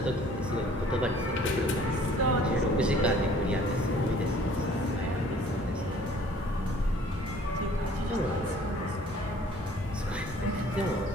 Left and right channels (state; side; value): normal; both; correlation 0.54